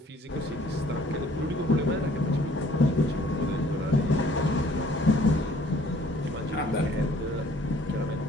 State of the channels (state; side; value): normal; both; correlation 0.57